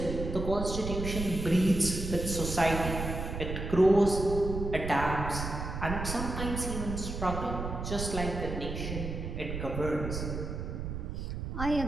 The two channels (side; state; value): right; noise; rumble, 5 dB below the sound